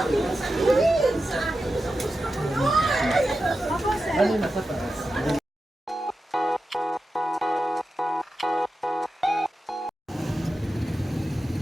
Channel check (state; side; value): normal; both; correlation 0.91